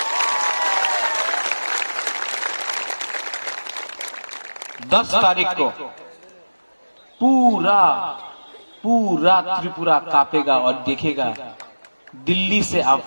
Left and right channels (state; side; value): inverted; both; correlation -1.00